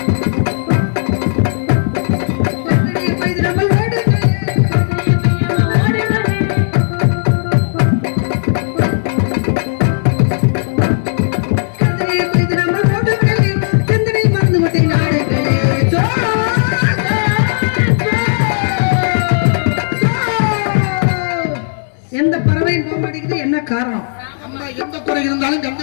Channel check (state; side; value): silent; right; digital silence